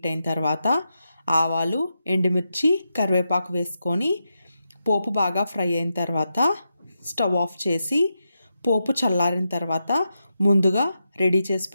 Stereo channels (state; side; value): inverted; both; correlation -0.87